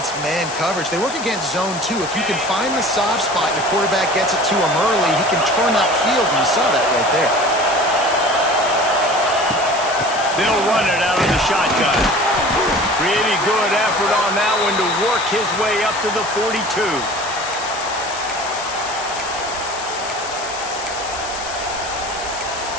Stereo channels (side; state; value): left; noise; hiss, 10 dB below the sound